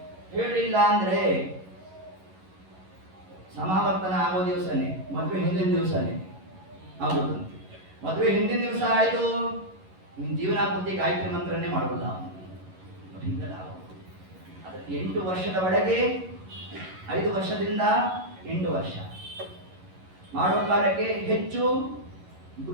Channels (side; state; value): left; late; 11 ms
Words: ಹೇಳಿಲ್ಲ ಅಂದ್ರೆ ಸಮಾವರ್ತನ ಆಗೋ ದಿವಸನೇ, ಮದುವೆ ಹಿಂದಿನ ದಿವಸನೇ ಆಗೋದಂತೆ. ಮದುವೆ ಹಿಂದಿನ ದಿವಸ ಆಯ್ತು, ನಿನ್ ಜೀವನ ಪೂರ್ತಿ ಗಾಯತ್ರಿ ಮಂತ್ರನೇ ಮಾಡೋಲ್ಲ. ಹಿಂದೆಲ್ಲ ಅದಕ್ಕೆ 8 ವರ್ಷದ ಒಳಗೆ, 5 ವರ್ಷದಿಂದ 8 ವರ್ಷ ಮಾಡೋ ಕಾಲಕ್ಕೆ ಹೆಚ್ಚು